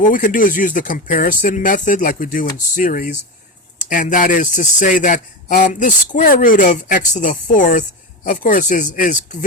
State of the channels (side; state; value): both; normal; correlation 0.19